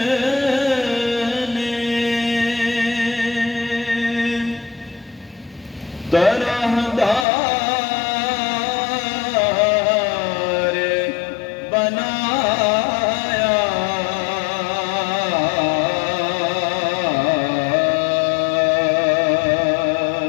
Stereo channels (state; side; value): drops out; right; at 7.2 s